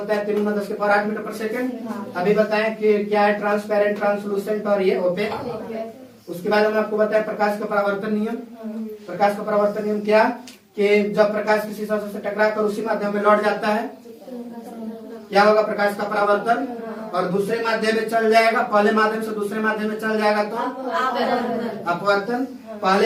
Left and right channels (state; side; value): identical; both; correlation 1.00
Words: है 3 गुना 10 के पावर 8 मीटर पर सेकंड। अभी बताएं कि क्या है, ट्रांसपेरेंट, ट्रांसलूसेंट और ये ओपेक। उसके बाद हम आपको बताएं प्रकाश का परावर्तन नियम। प्रकाश का परावर्तन नियम क्या, कि जब प्रकाश किसी सतह से टकराकर उसी माध्यम में लौट जाता है, क्या होगा, प्रकाश का परावर्तन, और दूसरे माध्यम में चल जाएगा। पहले माध्यम से दूसरे माध्यम में चल जाएगा तो अपवर्तन।